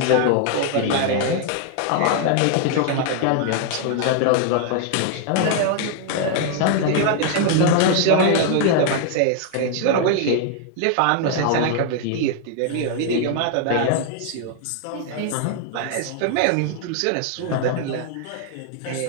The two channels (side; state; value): both; different; correlation 0.00